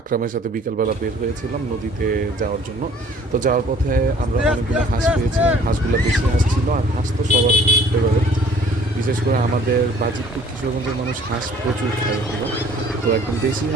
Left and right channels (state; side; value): normal; both; correlation 0.53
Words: সাথে বিকালবেলা বের হয়েছিলাম নদীতে যাওয়ার জন্য। তো যাওয়ার পথে আমরা অনেকগুলো হাঁস পেয়েছিলাম, হাঁসগুলো বেশি হাঁস ছিল, আর হাঁস তো সবার ফেভারিট। বিশেষ করে আমাদের বাজিতপুর কিশোরগঞ্জের মানুষ হাঁস প্রচুর খায় হলো। তো একদম দেশি